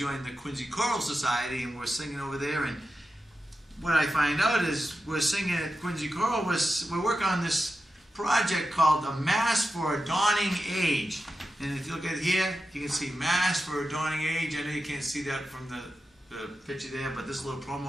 the Quincy Choral Society, and we're singing over there. And what I find out is we're singing at Quincy Choral. We're working on this project called the Mass for a Dawning Age. And if you look at here, you can see Mass for a Dawning Age. I know you can't see that from the picture there, but this little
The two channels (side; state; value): both; normal; correlation 0.91